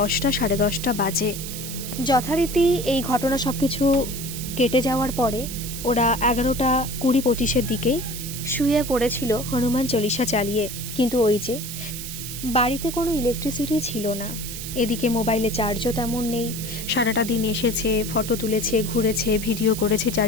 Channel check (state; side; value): noise; right; hiss, 8 dB below the sound